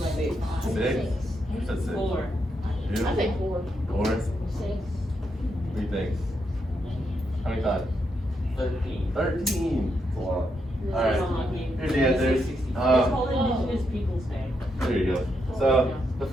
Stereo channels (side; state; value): both; normal; correlation 0.80